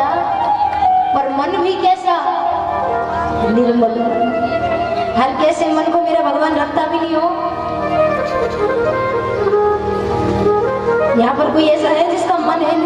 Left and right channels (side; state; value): both; identical; correlation 1.00